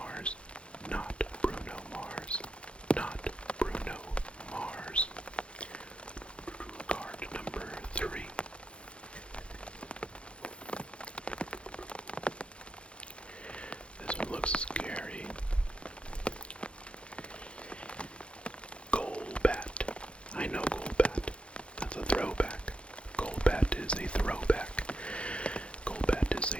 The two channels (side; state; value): right; late; 0.059 ms